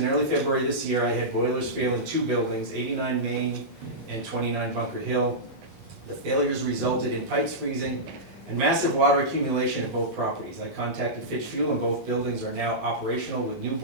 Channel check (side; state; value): both; normal; correlation -0.14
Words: early February this year, I had boilers fail in 2 buildings, 89 Main and 29 Bunker Hill. The failures resulted in pipes freezing and massive water accumulation at both properties. I contacted Fitch Fuel, and both buildings are now operational with new